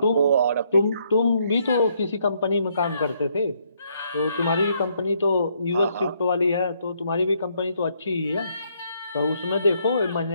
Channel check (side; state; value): both; inverted; correlation -0.71